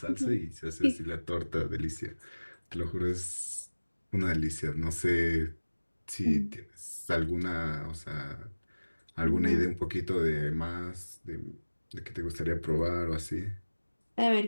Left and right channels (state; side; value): inverted; both; correlation -1.00